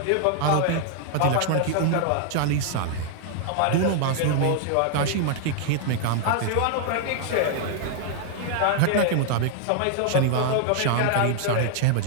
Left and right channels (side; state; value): both; different; correlation 0.00